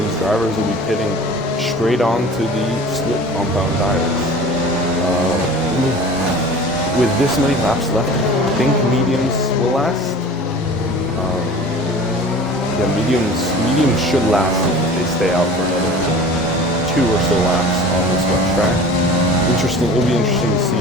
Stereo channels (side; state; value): both; normal; correlation 0.41